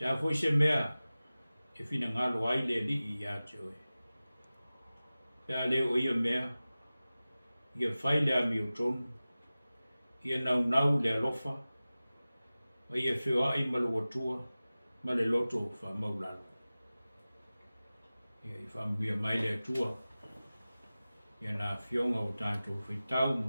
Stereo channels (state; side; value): inverted; both; correlation -0.97